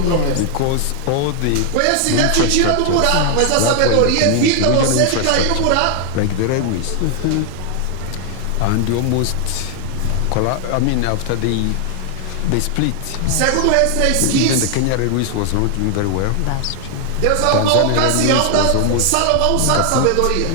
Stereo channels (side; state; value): both; different; correlation 0.00